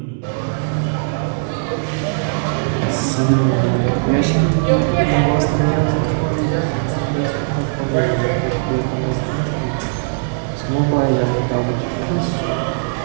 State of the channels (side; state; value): left; silent; 66 dB below the other